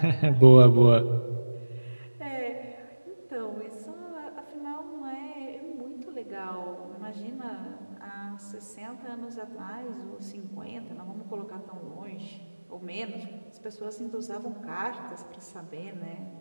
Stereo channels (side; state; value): both; inverted; correlation -1.00